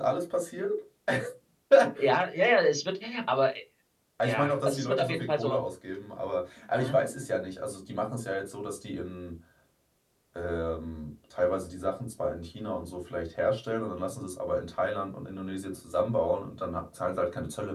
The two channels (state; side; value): identical; both; correlation 1.00